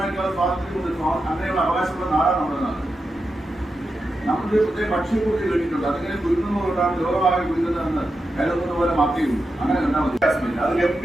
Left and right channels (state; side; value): normal; both; correlation 0.89